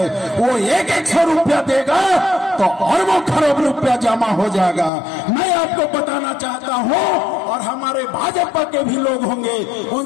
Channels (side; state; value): right; drops out; at 4.9 s